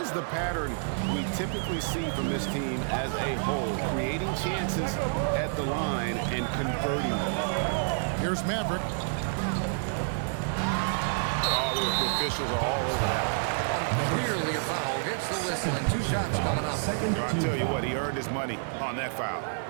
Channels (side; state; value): left; silent; digital silence